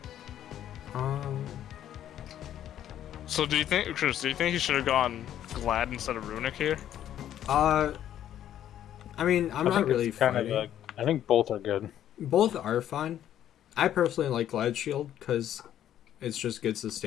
So do you think, Chris? Do you think he should have gone Glad instead of Runic here? I mean, I'm not really fighting. I think both are good. Both are fine. I personally like Glad Shield because it's just good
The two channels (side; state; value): right; quieter; 11.1 dB